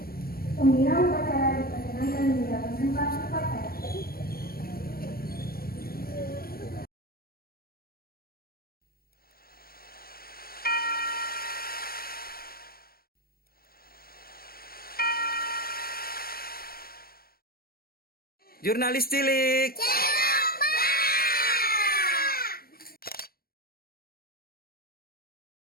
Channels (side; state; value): right; late; 0.44 ms